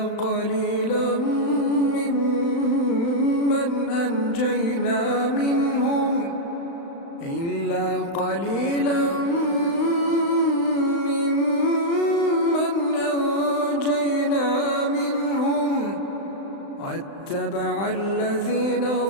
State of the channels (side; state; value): right; late; 35 ms